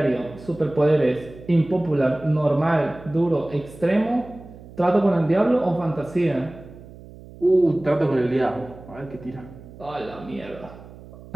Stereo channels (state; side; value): noise; right; hum, 18 dB below the sound